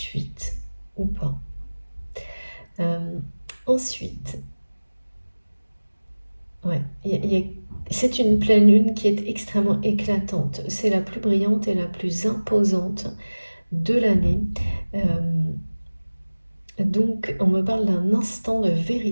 ou pas. Ensuite, ouais, c'est une pleine lune qui est extrêmement éclatante. C'est la plus brillante et la plus imposante de l'année. Donc, on me parle d'un instant de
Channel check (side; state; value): both; inverted; correlation -1.00